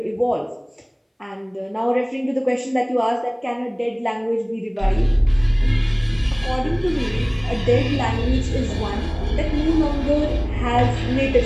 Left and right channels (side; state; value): both; identical; correlation 1.00